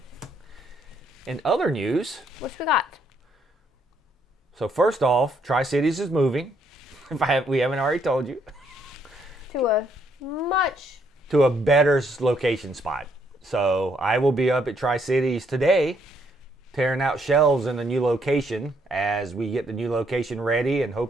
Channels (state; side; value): normal; both; correlation 0.71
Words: What we got? So first off, Tricities is moving. If we haven't already told you. To a better location spot. So I will be up at Tricities today, tearing out shelves in the new location as we get the new location ready and